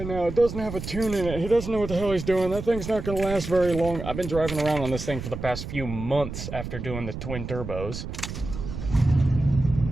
now, it doesn't have a tune in it, he doesn't know what the hell he's doing, that thing's not going to last very long. I've been driving around on this thing for the past few months after doing the twin turbos.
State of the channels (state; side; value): noise; right; rumble, 8 dB below the sound